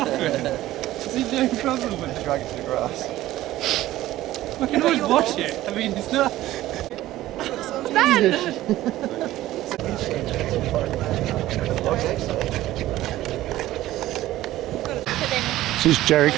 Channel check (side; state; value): left; quieter; 15.3 dB